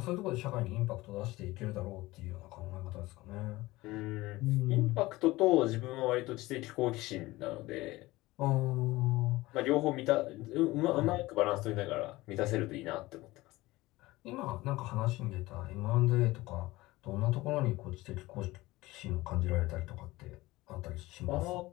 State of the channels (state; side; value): quieter; right; 19.4 dB